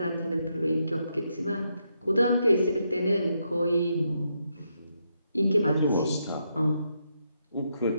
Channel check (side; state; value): both; inverted; correlation -0.80